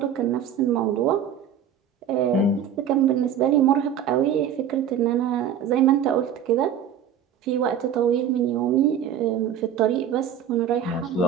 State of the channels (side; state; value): left; quieter; 8.7 dB